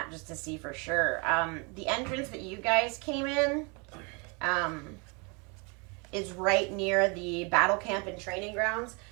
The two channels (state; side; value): quieter; left; 32.0 dB